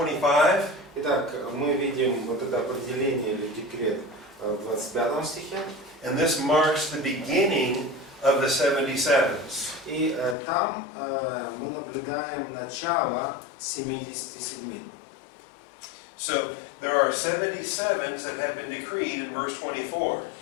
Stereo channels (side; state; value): right; drops out; at 10.4 s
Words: Итак, мы видим вот это определение или декрет в 25 стихе. And this marks the beginning of the 77s. И там мы наблюдаем начало 77. So there are 77s that have been decreed in verse 24.